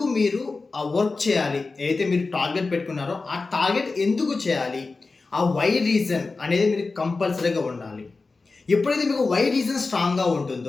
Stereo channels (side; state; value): right; quieter; 3.9 dB